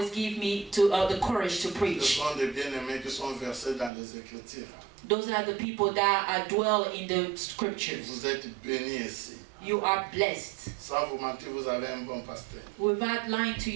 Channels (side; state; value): left; drops out; at 3.9 s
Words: give me the courage to Ce preach. sont des bien-aimés qui sont versés dans les Écritures. Those are the people that dwell in the scriptures. Vous êtes bénis ici. You are blessed. Sans vous mentir, vous avez un bon pasteur. Without lying to